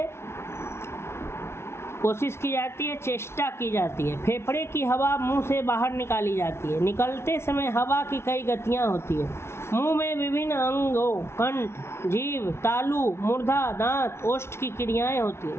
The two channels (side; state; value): right; late; 0.12 ms